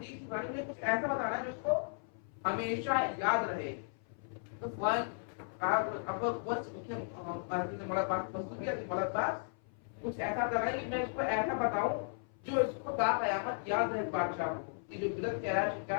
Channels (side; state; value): right; silent; 54 dB below the other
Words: بتانی ہے, کچھ ایسا بتانا ہے جو اس کو ہمیشہ یاد رہے. تو کچھ ایسا کرا کہ میں اس کو ایسا بتاؤں جو اس کو تا قیامت یاد رہے بادشاہ کو, کہ جو بدعت کہہ رہا ہے شکا